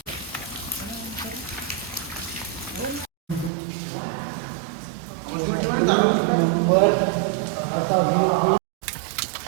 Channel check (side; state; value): left; drops out; at 3.5 s